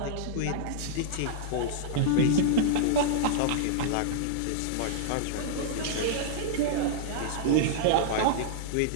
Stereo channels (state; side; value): different; both; correlation -0.01